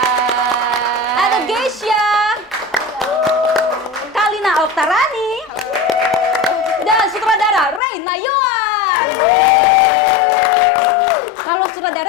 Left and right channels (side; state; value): right; drops out; at 7.8 s